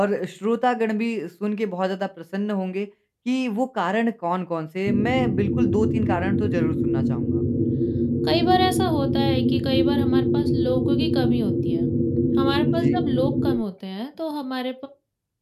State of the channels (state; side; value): identical; both; correlation 1.00